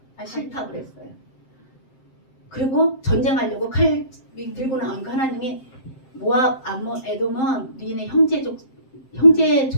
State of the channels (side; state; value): right; late; 7.6 ms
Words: 싫다 그랬어요. 그리고 전쟁하려고 칼 들고 나오니까 하나님이 모압, 암몬, 에돔은 니네 형제